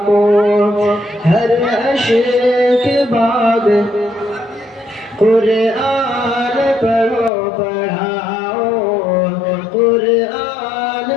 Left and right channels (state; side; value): drops out; right; at 7.3 s